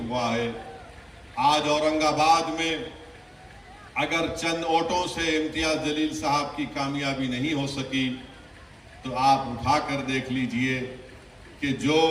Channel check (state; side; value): identical; both; correlation 1.00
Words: ہے. آج اورنگ آباد میں اگر چند ووٹوں سے امتیاز جلیل صاحب کی کامیابی نہیں ہو سکی تو آپ اٹھا کر دیکھ لیجئے کہ جو